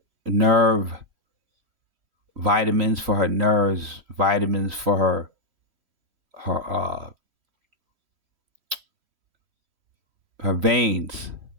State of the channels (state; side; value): late; left; 3.1 ms